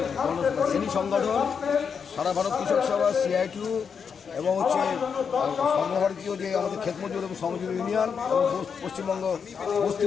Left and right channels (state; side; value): quieter; right; 6.5 dB